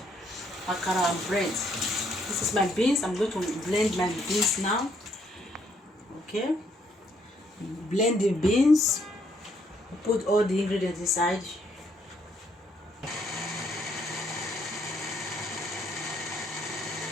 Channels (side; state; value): both; normal; correlation 0.70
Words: Akara and bread. This is my beans. I'm going to blend my beans now. Okay? Blend the beans. Put all the ingredients inside.